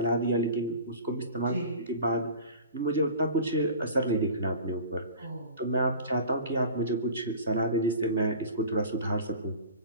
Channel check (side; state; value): both; inverted; correlation -0.39